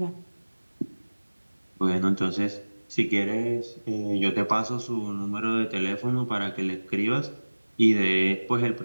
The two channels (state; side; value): inverted; both; correlation -1.00